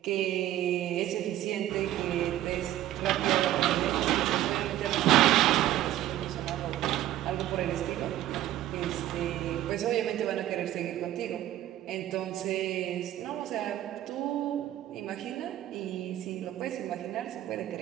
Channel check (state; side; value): quieter; left; 13.5 dB